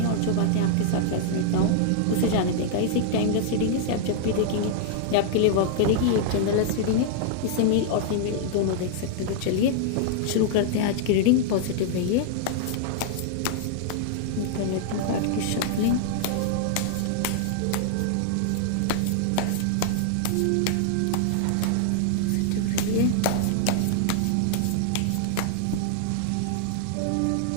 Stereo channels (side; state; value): both; different; correlation -0.01